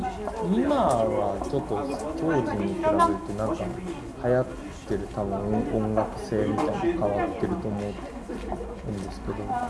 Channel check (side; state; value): both; identical; correlation 1.00